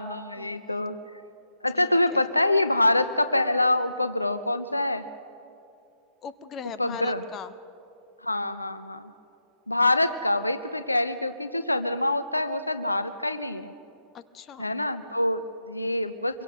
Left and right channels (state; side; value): inverted; both; correlation -0.88